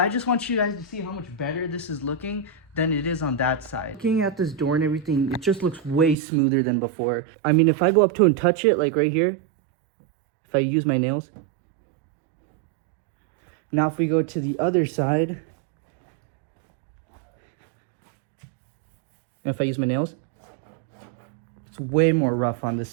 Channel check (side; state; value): left; drops out; at 6.2 s